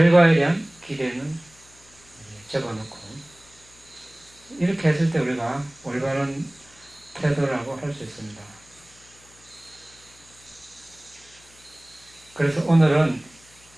대한 기대는 접어놓고, 이렇게 했을 때 우리가 올바른 태도라고 할 수 있습니다. 그래서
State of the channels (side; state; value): left; noise; hum, 27 dB below the sound